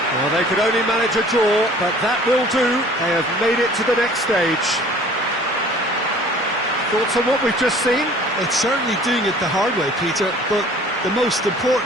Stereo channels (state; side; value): normal; both; correlation 0.50